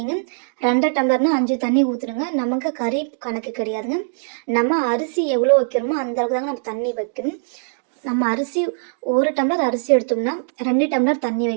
2 டம்ளர்னால் 5 தண்ணி ஊற்றுணுங்க. நமக்கு கறி கணக்கு கிடையாதுங்க. நம்ம அரிசி எவ்வளோ வைக்கிறோமோ அந்த அளவுக்கு தாங்க நம்ம தண்ணி வைக்கணும். நம்ம அரிசி 1 டம்ளர் அரிசி எடுத்தோம்னா 2 டம்ளர் தண்ணி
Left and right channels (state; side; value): silent; left; digital silence